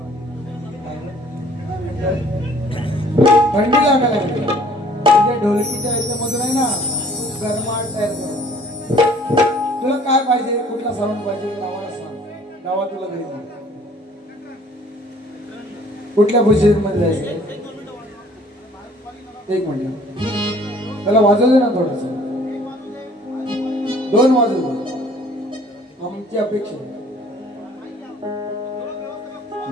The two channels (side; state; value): both; normal; correlation 0.55